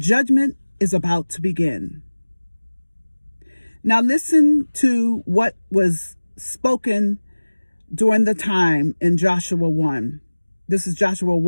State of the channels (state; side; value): inverted; both; correlation -1.00